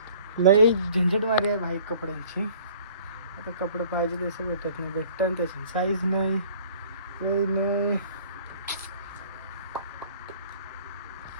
लई झंझट मारी आहे भाई कपड्यांची. आता कपडे पाहिजे तसं भेटत नाही. भेटतं त्याची साईज नाही नाही.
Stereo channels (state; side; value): inverted; both; correlation -0.51